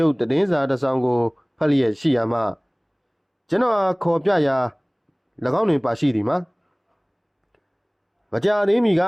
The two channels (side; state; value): both; identical; correlation 1.00